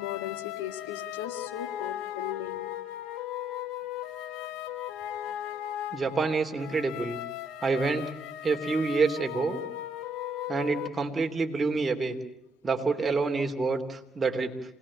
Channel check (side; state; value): both; normal; correlation 0.71